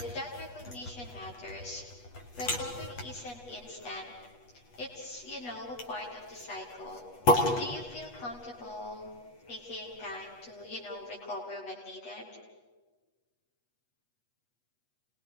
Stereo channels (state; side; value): late; right; 8.2 ms